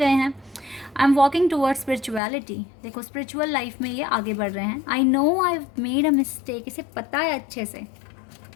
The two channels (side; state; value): right; drops out; at 2.2 s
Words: हैं। I am walking toward spirituality. देखो स्पिरिचुअल लाइफ में ये आगे बढ़ रहे हैं। I know I made a mistake. इसे पता है अच्छे से,